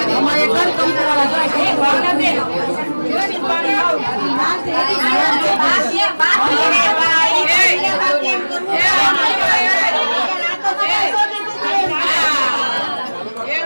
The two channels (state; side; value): inverted; both; correlation -1.00